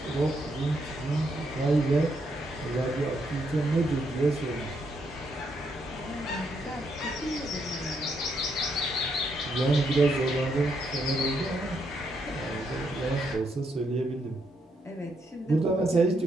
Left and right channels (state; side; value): normal; both; correlation 0.77